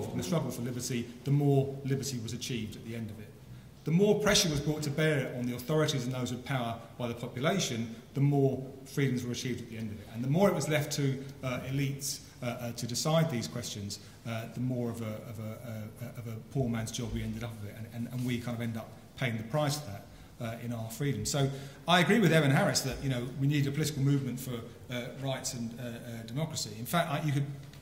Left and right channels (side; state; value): both; identical; correlation 1.00